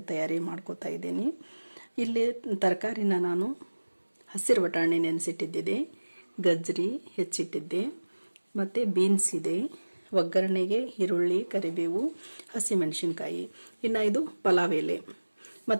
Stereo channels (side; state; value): both; inverted; correlation -1.00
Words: ತಯಾರಿ ಮಾಡ್ಕೋತಾ ಇದ್ದೀನಿ. ಇಲ್ಲಿ ತರಕಾರಿನ ನಾನು ಹಸಿರು ಬಟಾಣಿ ನೆನೆಸಿಟ್ಟಿದ್ದೆ, ಗಜ್ಜರಿ ಹೆಚ್ಚಿಟ್ಟಿದ್ದೆ, ಮತ್ತು ಬೀನ್ಸ್ ಇದೆ, ಒಗ್ಗರಣೆಗೆ ಈರುಳ್ಳಿ, ಕರಿಬೇವು, ಹಸಿಮೆಣಸಿನ್ಕಾಯಿ, ಇನ್ನು ಇದು ಪಲಾವ್ ಎಲೆ